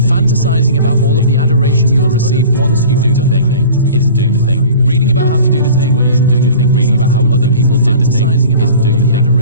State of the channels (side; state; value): both; inverted; correlation -0.42